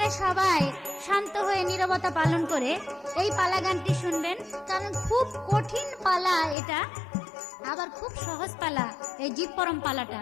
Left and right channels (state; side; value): drops out; right; at 6.6 s